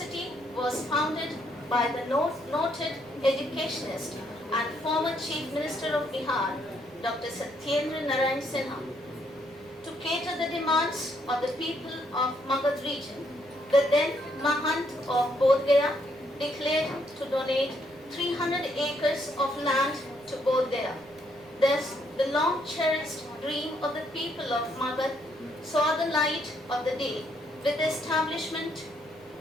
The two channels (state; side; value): noise; right; rumble, 29 dB below the sound